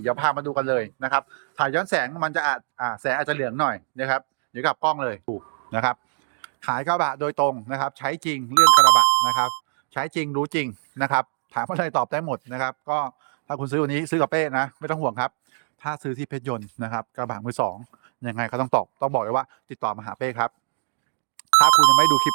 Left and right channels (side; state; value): left; silent; digital silence